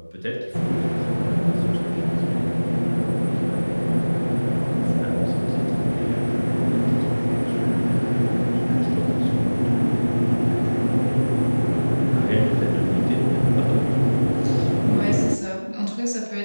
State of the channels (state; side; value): inverted; both; correlation -1.00